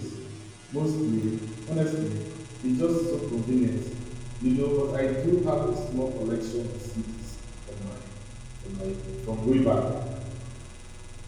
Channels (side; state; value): both; identical; correlation 1.00